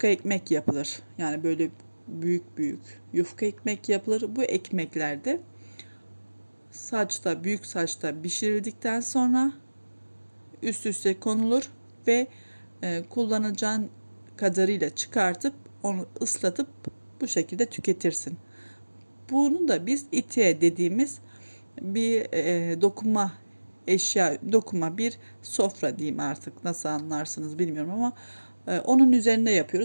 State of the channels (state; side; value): inverted; both; correlation -1.00